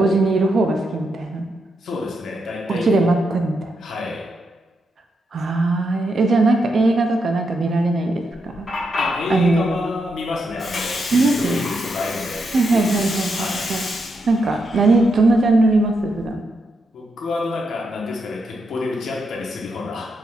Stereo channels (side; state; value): both; normal; correlation 0.83